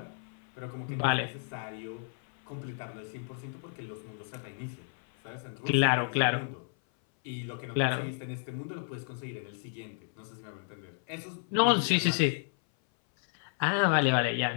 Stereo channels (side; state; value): right; silent; 56 dB below the other